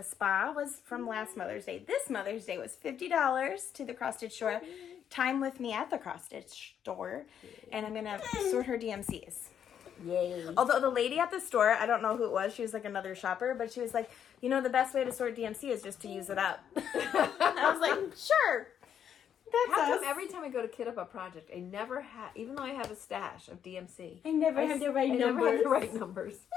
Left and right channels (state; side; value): quieter; right; 8.9 dB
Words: spa was from last Mother's Day. This Mother's Day was $50 to the cross stitch store. Time with me at the cross stitch store, and I'm gonna sort her DMCs. Yay. Although the lady at the store, I don't know who it was, she was like another shopper, but she was like, you know, the best way to sort DMC is just to use it up. I was like, sure. That's every time I go to kit up a project, I never have, even though I have a stash of DMC. I never have the right numbers. Never have the right numbers.